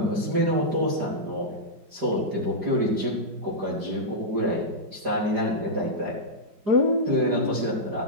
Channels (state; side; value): late; left; 5.0 ms